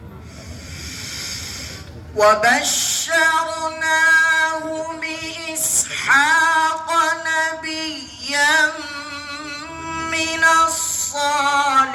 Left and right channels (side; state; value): both; identical; correlation 1.00